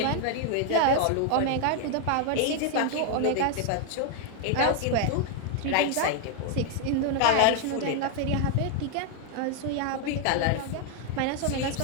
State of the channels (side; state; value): both; different; correlation 0.00